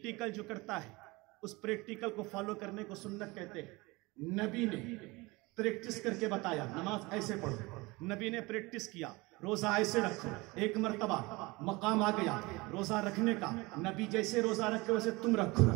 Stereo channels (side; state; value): left; quieter; 23.5 dB